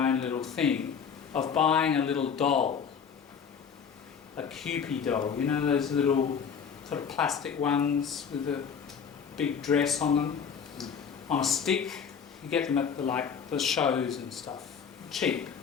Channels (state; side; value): quieter; right; 6.8 dB